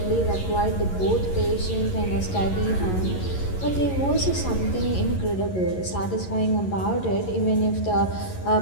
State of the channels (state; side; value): late; right; 11 ms